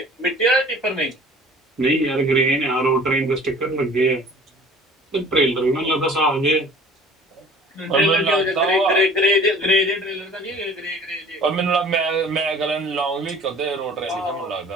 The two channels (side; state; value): both; normal; correlation 0.48